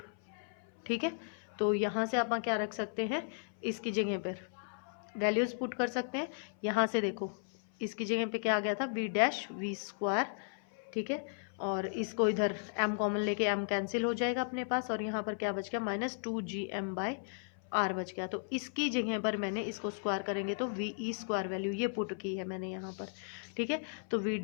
ठीक है। तो यहाँ से आप क्या रख सकते हैं, इसकी जगह पर वैल्यूज पुट कर सकते हैं। यहाँ से देखो इसकी जगह पे क्या आ गया था, वी डैश वी स्क्वायर, ठीक है, और इसको इधर m कॉमन लेके m कैंसिल हो जाएगा अपने पास, और यहाँ पर क्या बच गया, -2gm/r बच गया। तो इसकी जगह पर मैंने इसको स्क्वायर करेंगे तो वी ई स्क्वायर वैल्यू ये पुट की है मैंने यहाँ पर, ठीक है। तो वी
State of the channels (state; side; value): silent; right; 54 dB below the other